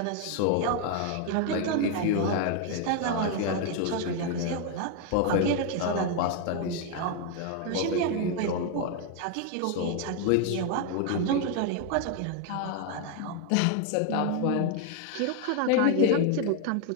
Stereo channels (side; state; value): both; different; correlation 0.01